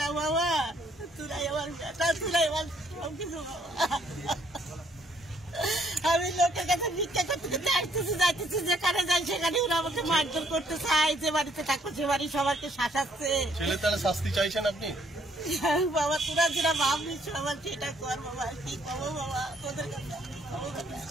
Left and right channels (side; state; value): both; normal; correlation 0.67